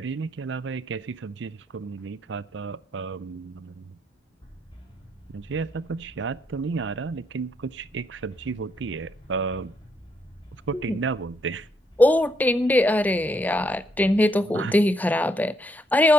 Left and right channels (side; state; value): both; normal; correlation 0.74